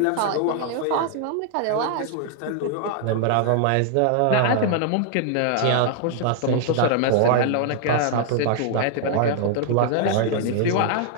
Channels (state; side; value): different; both; correlation -0.01